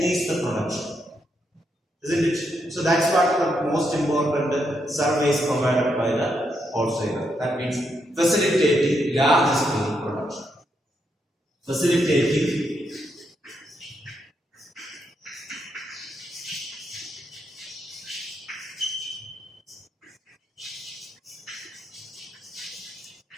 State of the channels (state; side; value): normal; both; correlation 0.80